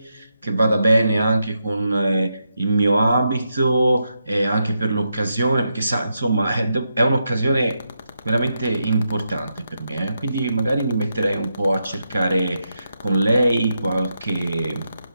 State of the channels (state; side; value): inverted; both; correlation -0.84